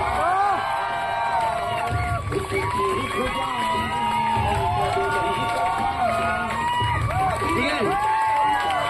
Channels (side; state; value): both; identical; correlation 1.00